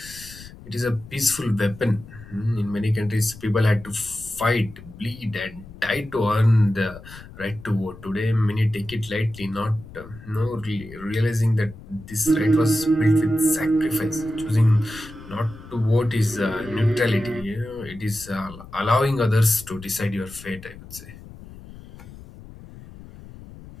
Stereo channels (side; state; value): left; noise; rumble, 17 dB below the sound